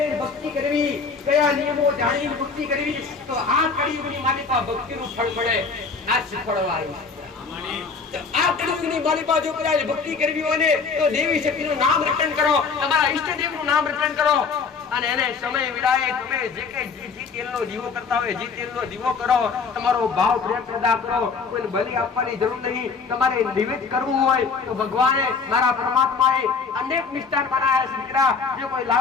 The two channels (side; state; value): right; quieter; 5.0 dB